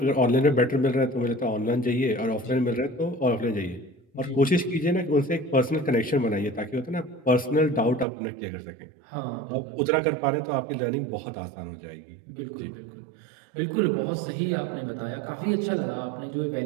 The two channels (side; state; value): left; drops out; at 8.1 s